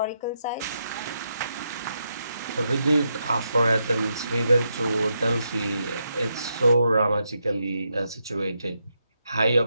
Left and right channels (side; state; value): both; inverted; correlation -0.82